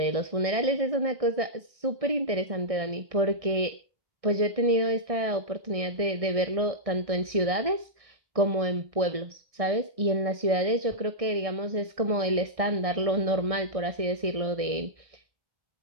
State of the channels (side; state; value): left; late; 1.6 ms